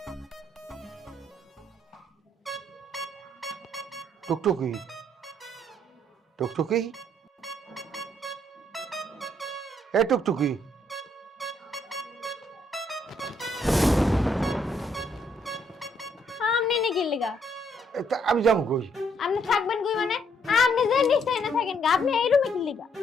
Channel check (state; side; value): normal; both; correlation 0.70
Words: টুকটুকি টুকটুকি এ টুকটুকি আমনি নি কি লিগা আমি যাবো কই আপনি থাকবেন কই মানে আপনি আপনি যে নিশ্চয় না থাকেন গা, আপনি এই রুমে কি লিগা?